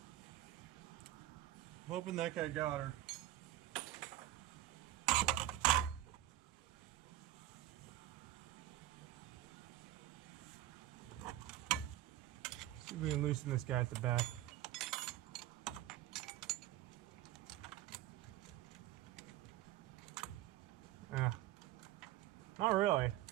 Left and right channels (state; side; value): quieter; left; 14.5 dB